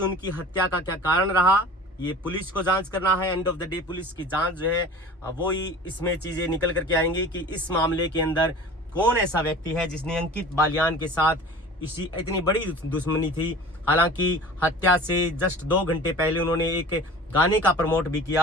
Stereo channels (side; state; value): both; normal; correlation 0.41